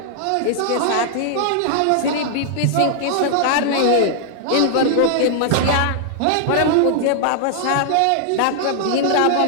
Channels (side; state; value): both; different; correlation -0.01